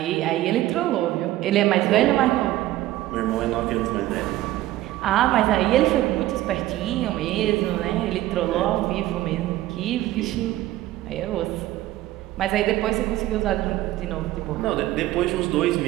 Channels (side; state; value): left; quieter; 15.4 dB